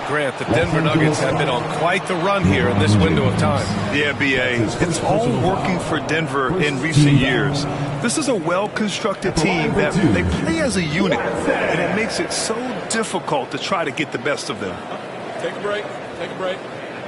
Grant, the Denver Nuggets have been on quite the run here in this window of time. Yeah, B.A. It's all working for Denver in recent years. This is a well-constructed team that they play as a unit, and it makes it so difficult to try to get the best of them. Take a break. Take a break.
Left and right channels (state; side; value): identical; both; correlation 1.00